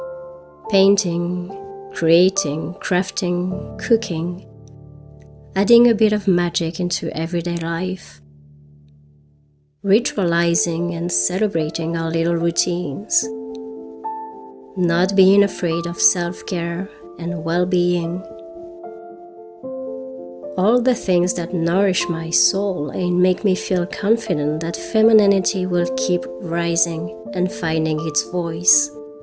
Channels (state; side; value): identical; both; correlation 1.00